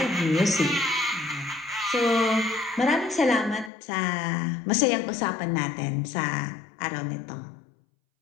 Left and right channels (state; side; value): drops out; right; at 3.7 s